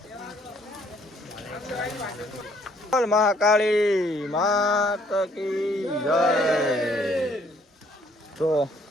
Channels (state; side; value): normal; both; correlation 0.64